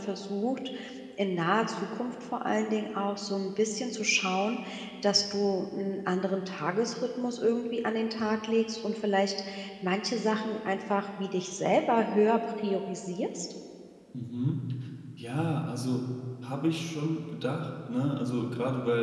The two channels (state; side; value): identical; both; correlation 1.00